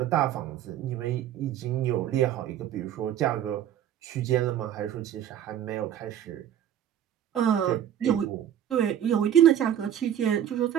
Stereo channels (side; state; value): left; quieter; 10.5 dB